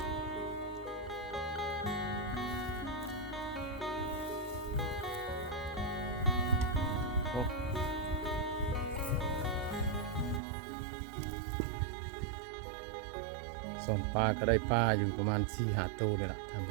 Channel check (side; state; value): left; drops out; at 10.4 s